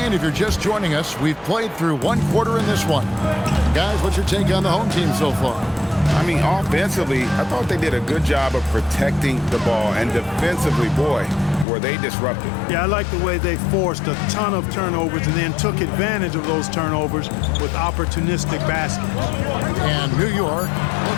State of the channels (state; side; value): drops out; right; at 11.7 s